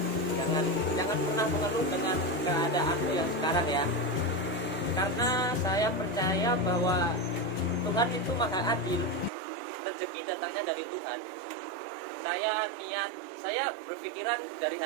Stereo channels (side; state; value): left; drops out; at 9.3 s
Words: Jangan pernah mengeluh dengan keadaan yang sekarang ya, karena saya percaya bahwa Tuhan itu maha adil. Rezeki datangnya dari Tuhan. Saya berpikiran dari